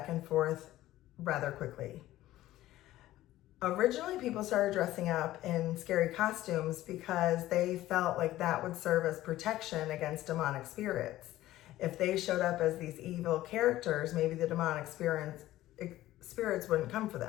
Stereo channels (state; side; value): quieter; right; 15.2 dB